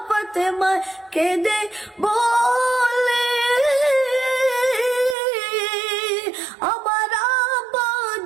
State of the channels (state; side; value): drops out; left; at 5.2 s